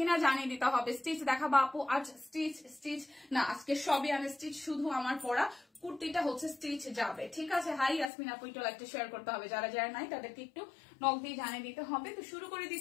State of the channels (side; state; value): right; drops out; at 8.1 s